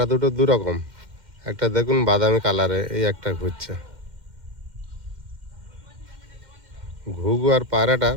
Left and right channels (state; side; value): late; left; 2.1 ms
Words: দুটো দু রকম, একটা দেখুন বাদামি কালারে, এই একটা ঘুরছে। ঘুঘু আর পায়রাটা